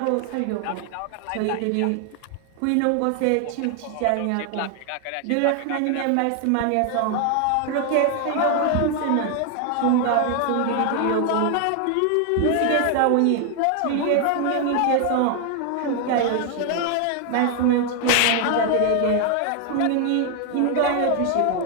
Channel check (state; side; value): different; both; correlation 0.00